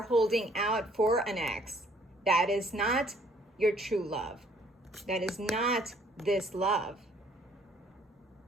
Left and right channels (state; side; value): normal; both; correlation 0.62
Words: holding out for an ex, that is not your true love. That is not this love.